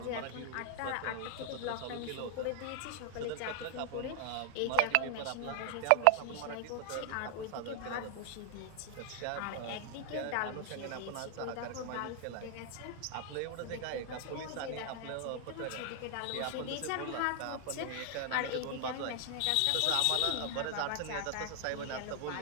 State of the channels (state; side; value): different; both; correlation 0.00